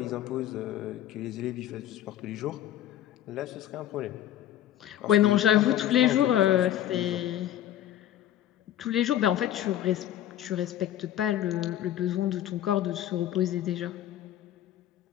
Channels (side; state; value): right; quieter; 12.0 dB